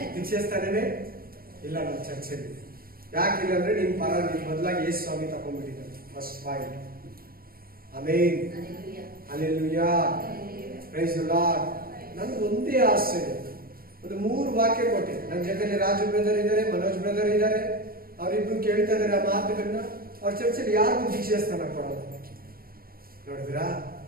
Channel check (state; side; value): late; left; 0.43 ms